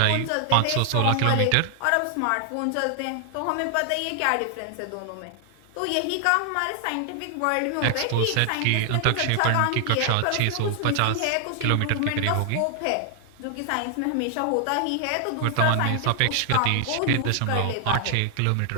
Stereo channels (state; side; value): different; both; correlation 0.00